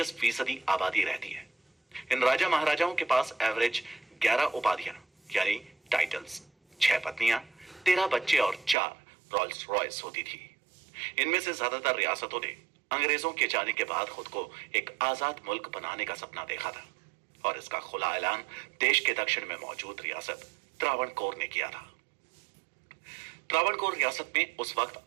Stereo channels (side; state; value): left; drops out; at 8.8 s